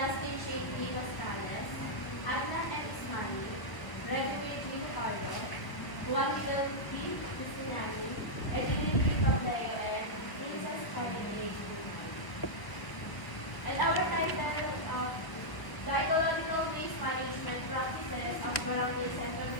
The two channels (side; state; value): right; late; 1.3 ms